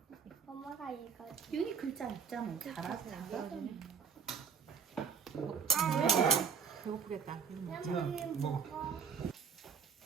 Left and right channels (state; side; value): quieter; left; 6.3 dB